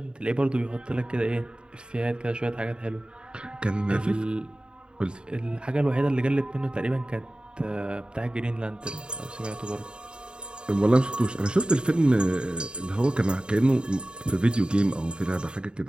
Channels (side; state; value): left; late; 0.051 ms